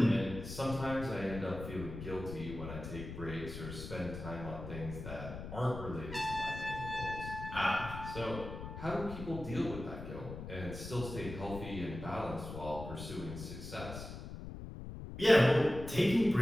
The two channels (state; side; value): noise; left; rumble, 9 dB below the sound